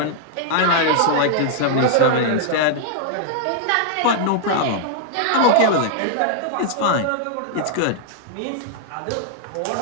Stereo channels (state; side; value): different; both; correlation -0.01